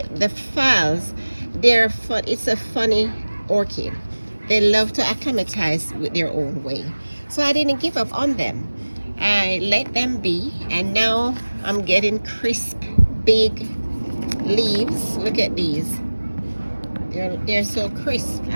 phals. They're fun. It's a funny orchid. They love to acclimatize with their own way. So I didn't give up on them. I let them be, and now I'm getting crisp, big leaves. Look at these. They're so crisp.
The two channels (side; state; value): both; inverted; correlation -1.00